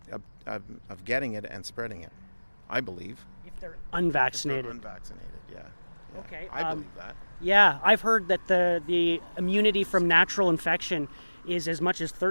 of getting it and spreading it. I believe. If they're unvaccinated. Yeah. Okay. I believe that. Yeah, I've heard that the immunity from natural infection is as much as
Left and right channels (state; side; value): inverted; both; correlation -1.00